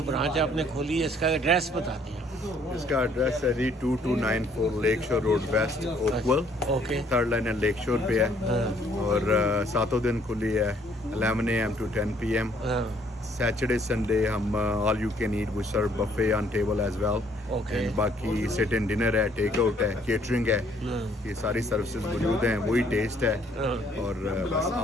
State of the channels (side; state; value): both; normal; correlation 0.64